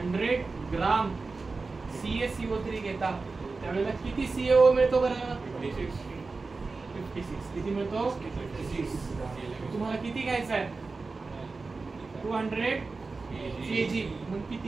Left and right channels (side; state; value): left; quieter; 4.0 dB